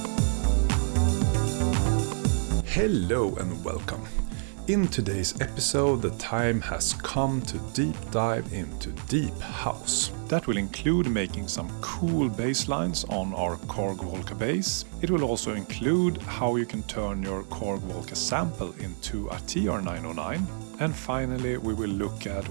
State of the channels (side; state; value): left; silent; digital silence